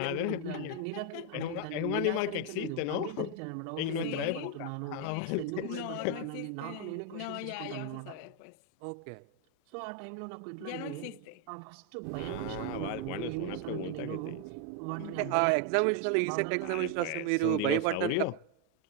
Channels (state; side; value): different; both; correlation 0.01